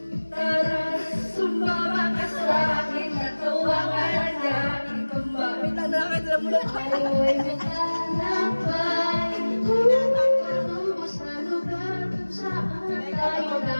Tara, sumama ka sa akin, natuwa ka na niya, ikaw ba? Wait lang, nakakita mo lang tayo, ay maglalakbay, patubos na lugar, kung saan tayo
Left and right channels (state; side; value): inverted; both; correlation -1.00